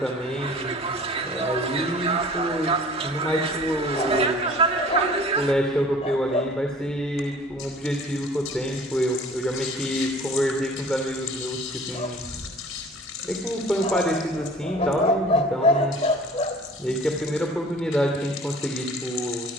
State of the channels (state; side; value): normal; both; correlation 0.47